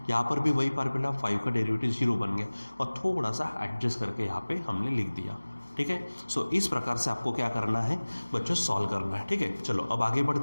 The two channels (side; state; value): both; inverted; correlation -1.00